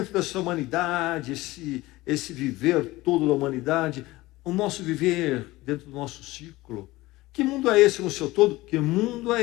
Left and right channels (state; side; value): quieter; right; 19.2 dB